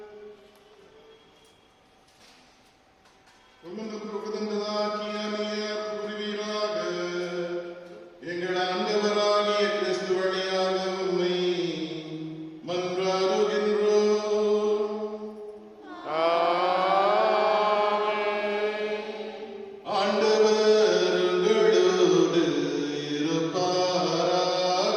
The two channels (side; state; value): both; identical; correlation 1.00